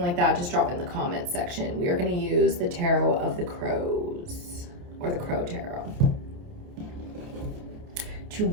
that, just drop it in the comments section. We are going to use the Tarot of the Crows, or the Crow Tarot.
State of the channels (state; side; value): late; left; 28 ms